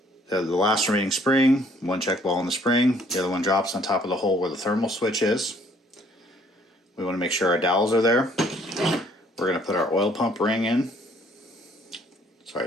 the last remaining spring, 1 check ball in the spring, the other one drops on top of the hole where the thermal switch is. We want to make sure our dowels are there. We're going to put our oil pump ring in. Sorry,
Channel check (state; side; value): normal; both; correlation 0.61